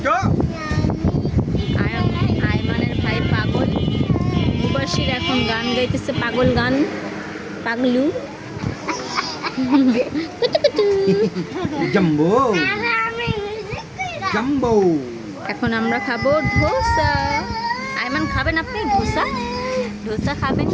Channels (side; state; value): both; identical; correlation 1.00